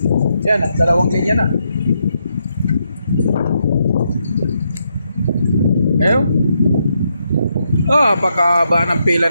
Yan, dalawang linya na. Ayun. Napakahaba ng pila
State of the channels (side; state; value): both; inverted; correlation -0.79